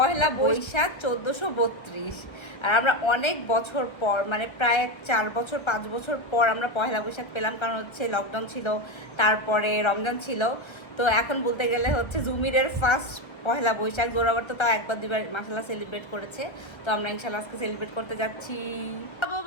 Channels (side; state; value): right; late; 1.3 ms